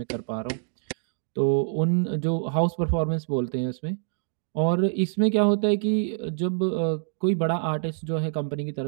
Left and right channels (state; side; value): silent; left; digital silence